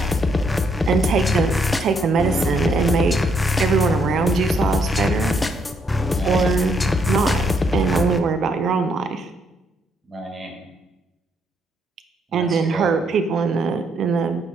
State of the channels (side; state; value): both; normal; correlation 0.73